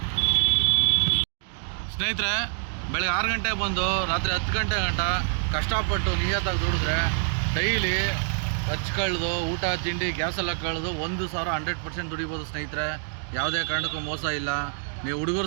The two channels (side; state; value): left; silent; digital silence